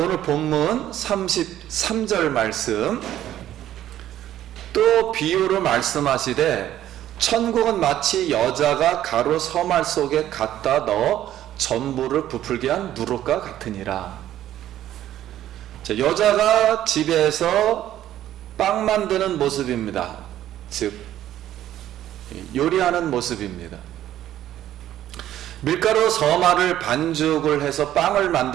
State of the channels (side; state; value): left; quieter; 12.3 dB